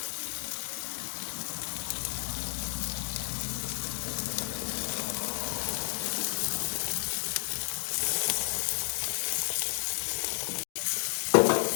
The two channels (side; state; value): right; silent; digital silence